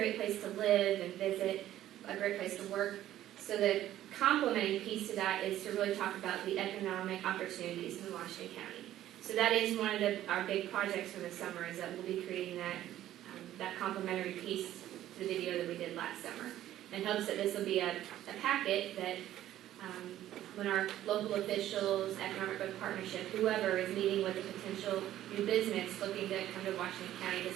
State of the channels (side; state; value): left; quieter; 13.0 dB